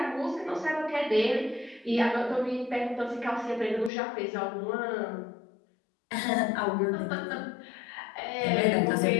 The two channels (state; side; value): drops out; right; at 3.9 s